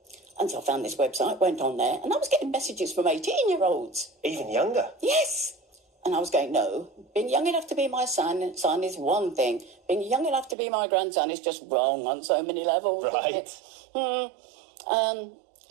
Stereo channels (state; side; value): drops out; left; at 10.6 s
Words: And so I found this website, went on there, and I was getting messages from 18-year-olds. Even younger. Yes. And I was going, no, being young enough to be my son is one thing. Being young enough to be my grandson is just wrong on so many levels. Right.